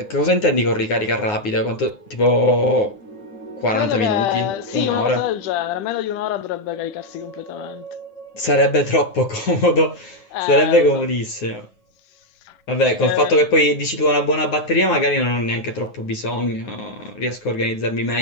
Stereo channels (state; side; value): late; right; 9.5 ms